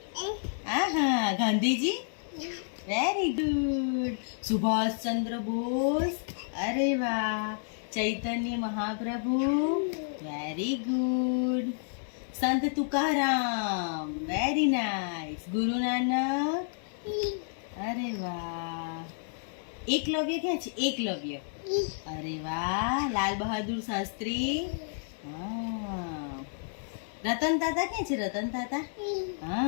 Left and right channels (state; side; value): silent; right; 57 dB below the other